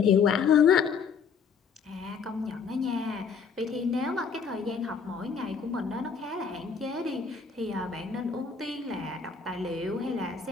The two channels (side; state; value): right; quieter; 5.9 dB